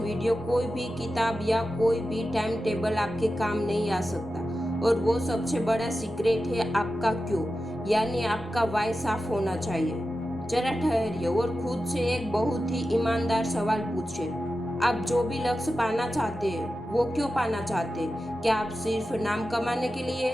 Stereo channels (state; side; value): normal; both; correlation 0.92